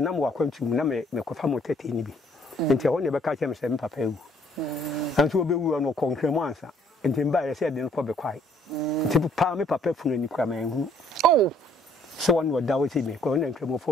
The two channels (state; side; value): normal; both; correlation 0.63